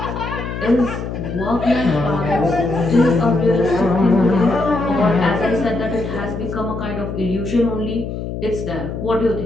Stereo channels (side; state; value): left; noise; hum, 6 dB below the sound